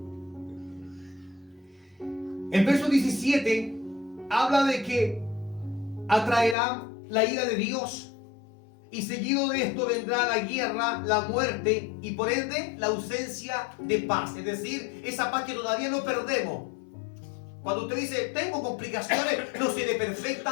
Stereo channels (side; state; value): right; drops out; at 6.6 s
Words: El verso 17 habla de que atraerá la ira de Dios y seguido de esto vendrá la guerra, la muerte y por ende la ausencia de paz. Es decir, esa paz que todavía no perdemos. Cuando usted dice, tengo complicaciones, no seré